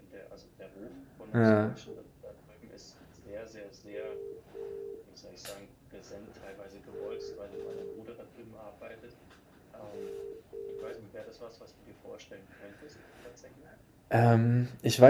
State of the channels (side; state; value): both; identical; correlation 1.00